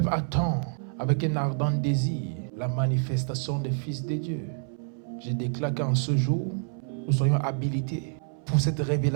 attend avec un ardent désir la manifestation des fils de Dieu. Je déclare qu'en ce jour, nous soyons habilités pour cette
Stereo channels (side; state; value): left; silent; 60 dB below the other